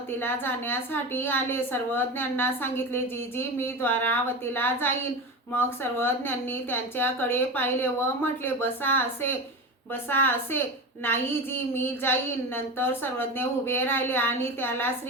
जाण्यासाठी आले. सर्वज्ञांना सांगितले, जीजी मी द्वारावतीला जाईन। मग सर्वज्ञांनी त्यांच्याकडे पाहिले व म्हटले, बसा असे नाही जी, मी जाईन। नंतर सर्वज्ञ उभे राहिले आणि त्याला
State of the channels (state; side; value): normal; both; correlation 0.24